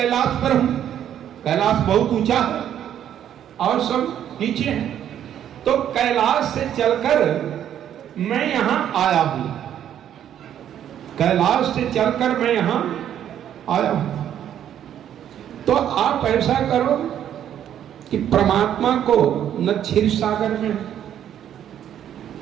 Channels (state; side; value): quieter; left; 10.2 dB